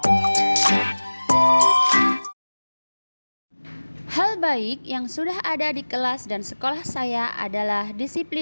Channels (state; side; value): inverted; both; correlation -1.00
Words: Hal baik yang sudah ada di kelas dan sekolah saya adalah